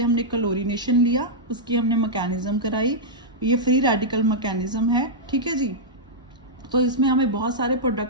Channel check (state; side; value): normal; both; correlation -0.09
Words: हमने क्लोरीनेशन लिया, उसकी हमने मैकेनिज्म कराई। ये फ्री रेडिकल मैकेनिज्म है, ठीक है जी। तो इसमें हमें बहुत सारे